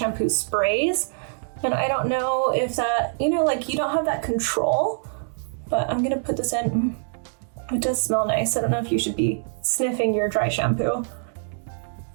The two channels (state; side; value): silent; left; digital silence